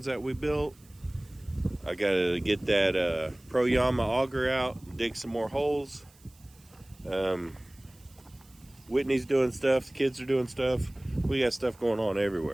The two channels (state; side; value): noise; right; hiss, 28 dB below the sound